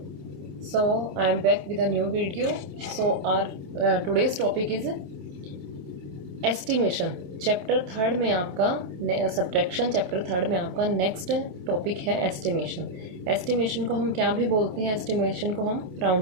So I am back with a new video. So our today's topic is estimation. Chapter third में आपका subtraction chapter third में आपका next topic है estimation. Estimation को हम क्या भी बोलते हैं, एस्टिमेशन को हम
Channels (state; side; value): late; left; 28 ms